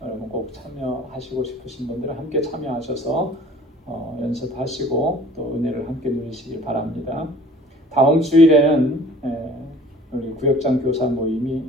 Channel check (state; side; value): normal; both; correlation 0.49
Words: 여러분 꼭 참여하시고 싶으신 분들은 함께 참여하셔서 연습하시고 또 은혜를 함께 누리시길 바랍니다. 다음 주일에는 우리 구역장 교사 모임이